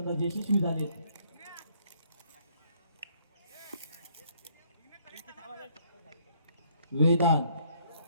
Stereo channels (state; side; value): inverted; both; correlation -0.65